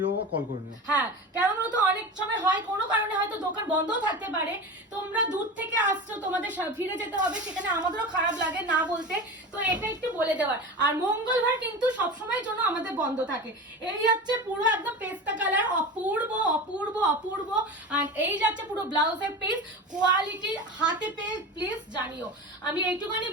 বা কল করে নিও। হ্যাঁ, কেমন হতো অনেক সময় হয় কোনো কারণে হয়তো দোকান বন্ধও থাকতে পারে, তোমরা দূর থেকে আসছো, তোমাদের ফিরে যেতে হবে, সেখানে আমাদেরও খারাপ লাগে না বলতে, তো এটা একটু বলে দেওয়ার। আর মঙ্গলবার কিন্তু সবসময়ের জন্য আমাদের বন্ধ থাকে। এই হচ্ছে পুরো একদম পেস্তা কালার, অপূর্ব অপূর্ব অপূর্ব। আর এই যাচ্ছে পুরো ব্লাউজের পিস, কোয়ালিটি হাতে পেয়ে প্লিজ জানিও। আমি এইটুখানি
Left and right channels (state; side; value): normal; both; correlation 0.28